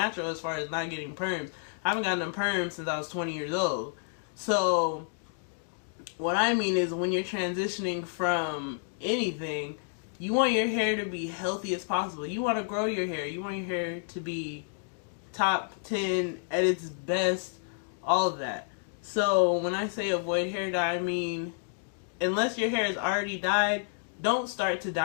as far as not getting perms. I haven't gotten a perm since I was 20 years old. So, what I mean is when you're transitioning from anything, you want your hair to be healthy as possible. You want to grow your hair. You want your hair to be top 10 at its best, all of that. So, when I say avoid hair dye, I mean, unless your hair is already dyed, don't start to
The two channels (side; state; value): right; silent; digital silence